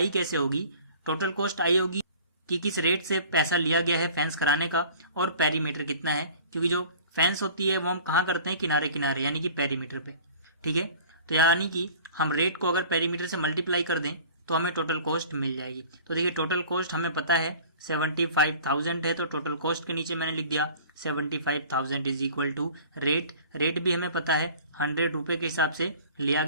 कैसे होगी? टोटल कॉस्ट आई होगी कि किस रेट से पैसा लिया गया है फेंस कराने का और पेरीमीटर कितना है, क्योंकि जो फेंस होती है वो हम कहाँ करते हैं? किनारे किनारे, यानी कि पेरीमीटर पे। ठीक है, तो यानी कि हम रेट को अगर पेरीमीटर से मल्टीप्लाई कर दें तो हमें टोटल कॉस्ट मिल जाएगी। तो देखिए टोटल कॉस्ट हमें पता है 75,000 है, तो टोटल कॉस्ट के नीचे मैंने लिख दिया 75,000 is equal to rate. Rate भी हमें पता है 100 रुपए के हिसाब से लिया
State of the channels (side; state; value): both; inverted; correlation -0.45